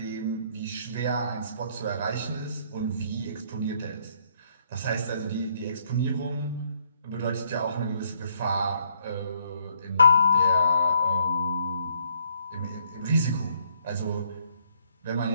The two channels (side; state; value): both; inverted; correlation -0.68